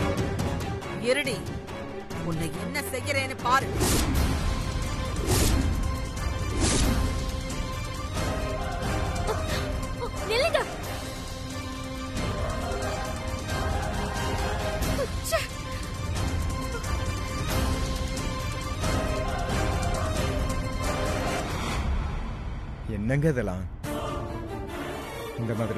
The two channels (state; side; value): identical; both; correlation 1.00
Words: இருடி, உன்னை என்ன செய்யறேன்னு பாரு. நில்லுங்க. என்னங்க இதெல்லாம்? இந்த